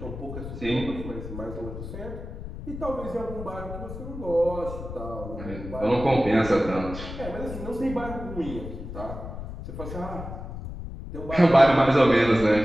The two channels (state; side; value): noise; left; rumble, 9 dB below the sound